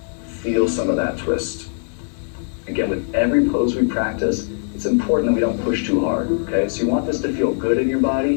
feel some of that twist. Again, with every pose we practice, it's important that we don't push too hard, okay? So you want this to feel good in your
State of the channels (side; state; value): right; silent; digital silence